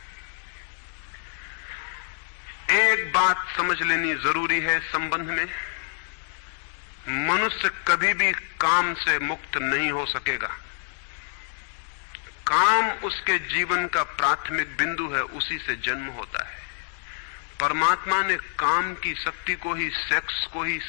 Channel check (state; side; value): silent; right; digital silence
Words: एक बात समझ लेनी जरूरी है संबंध में, मनुष्य कभी भी काम से मुक्त नहीं हो सकेगा। काम उसके जीवन का प्राथमिक बिंदु है, उसी से जन्म होता है। परमात्मा ने काम की शक्ति को ही, सेक्स को ही